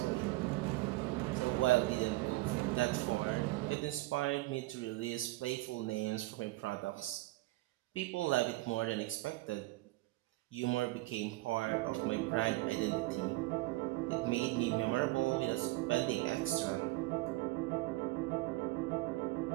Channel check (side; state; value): left; quieter; 20.1 dB